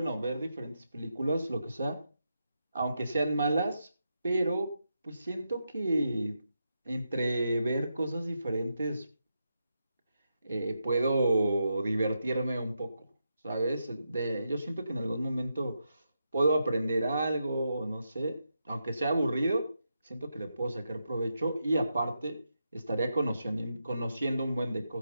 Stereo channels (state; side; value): inverted; both; correlation -0.85